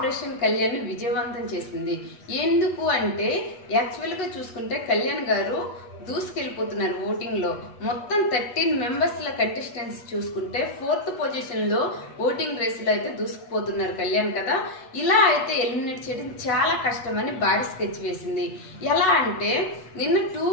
కళ్యాణ్ విజయవంతం చేసింది. ఎందుకు అంటే యాక్చువల్గా చూసుకుంటే కళ్యాణ్ గారు దూసుకెళ్ళిపోతున్నారు ఓటింగ్ లో. మొత్తం 13 మెంబర్స్ ల కంటెస్టెంట్స్ చూసుకుంటే 4th పొజిషన్ లో ఓటింగ్ రేస్ లో అయితే దూసుకుపోతున్నారు కళ్యాణ్ కదా. ఇలా అయితే ఎలిమినేట్ చేయడం చాలా కష్టమని భారీ స్కెచ్ వేసింది. ఎలా అంటే నిన్న 2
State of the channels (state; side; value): late; right; 8.1 ms